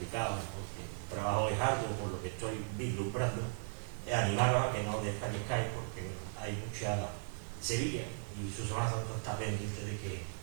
porque el trabajo es arduo por lo que estoy vislumbrando, animar a que no desfallezcáis porque hay mucha Sevilla y su Semana Santa está pendiente de que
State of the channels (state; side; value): silent; left; digital silence